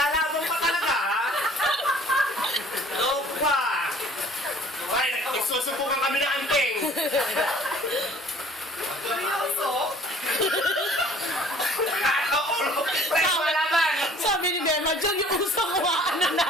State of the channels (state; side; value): normal; both; correlation 0.53